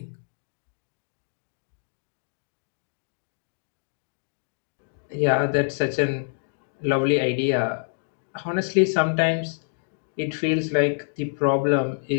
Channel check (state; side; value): silent; right; digital silence